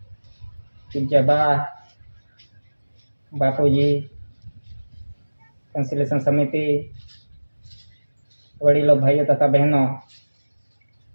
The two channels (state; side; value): inverted; both; correlation -1.00